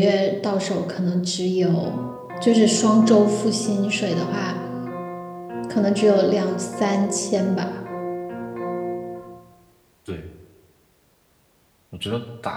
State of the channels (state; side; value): identical; both; correlation 1.00